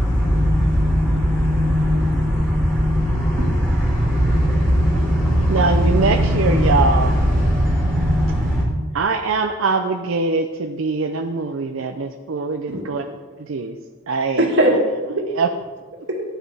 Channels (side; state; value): both; normal; correlation 0.60